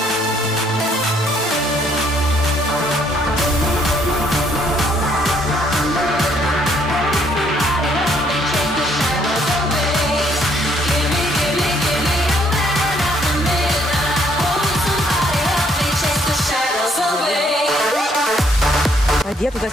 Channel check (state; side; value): normal; both; correlation 0.67